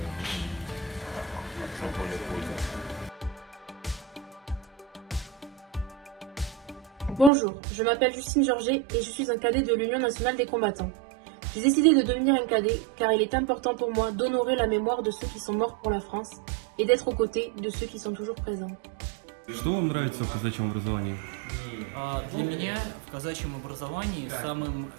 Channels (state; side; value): drops out; left; at 7.3 s